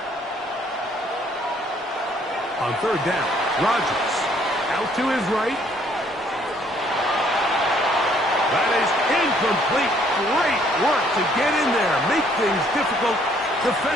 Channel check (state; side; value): normal; both; correlation 0.64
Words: On third down, Rodgers. Out to his right. That is incomplete. Great work to get in there. Make things difficult